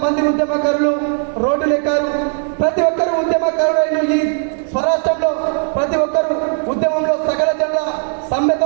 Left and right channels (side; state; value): left; silent; 55 dB below the other